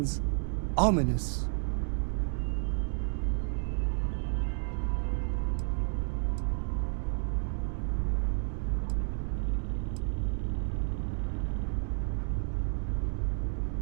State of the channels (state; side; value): silent; left; 57 dB below the other